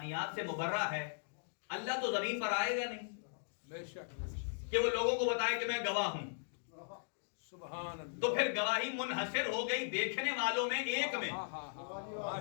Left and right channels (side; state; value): right; silent; digital silence